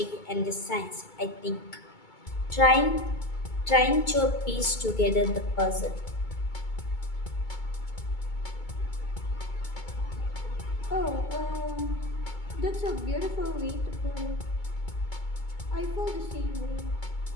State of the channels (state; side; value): late; right; 2.2 ms